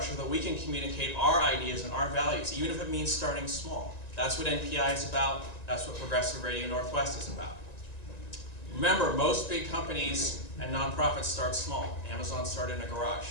so that we can communicate our ideas and our values, even if it means starting small. That's what NPI is about. That's what Progressive Radio Northwest is about. Remember, most big companies and nonprofits start small. Amazon started in a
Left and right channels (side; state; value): right; late; 1.9 ms